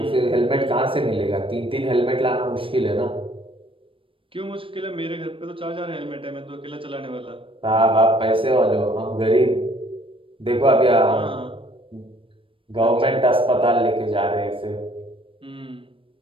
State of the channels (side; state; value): left; late; 0.25 ms